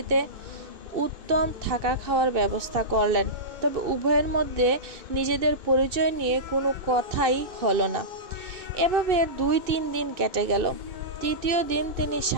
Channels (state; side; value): late; left; 2.6 ms